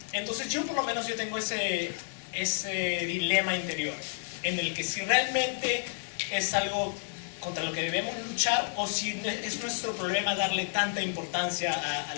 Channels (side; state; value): right; silent; 57 dB below the other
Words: Entonces yo por lo menos tengo ese dilema interior en el que si realmente es algo contra lo que debemos luchar o si es nuestro problema darle tanta importancia a